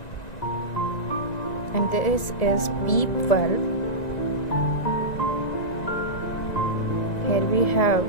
and this is PEEP valve. Here we have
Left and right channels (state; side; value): late; right; 1.9 ms